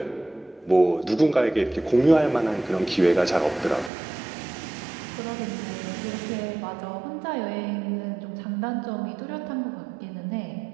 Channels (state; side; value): drops out; left; at 3.9 s